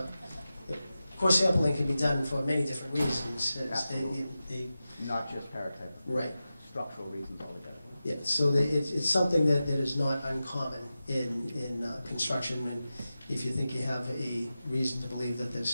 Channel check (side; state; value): both; inverted; correlation -0.93